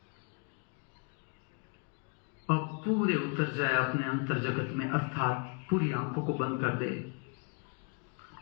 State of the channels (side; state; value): right; quieter; 37.8 dB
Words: अब पूरे उतर जाए अपने अंतर जगत में, अर्थात पूरी आंखों को बंद कर दे।